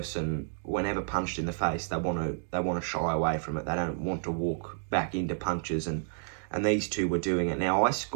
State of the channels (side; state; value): left; silent; digital silence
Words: whenever punched in the face, they want to shy away from it. They don't want to walk back into punches, and these two were doing it. Now, I